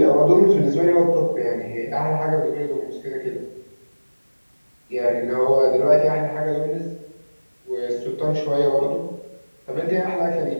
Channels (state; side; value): inverted; both; correlation -1.00